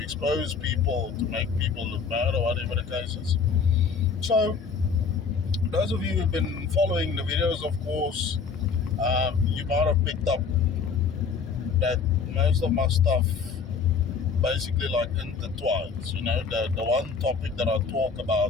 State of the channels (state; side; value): quieter; right; 5.5 dB